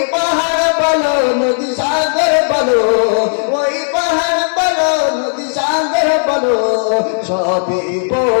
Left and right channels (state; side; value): silent; right; digital silence